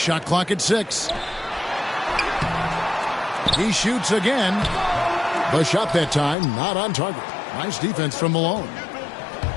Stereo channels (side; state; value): right; drops out; at 6.4 s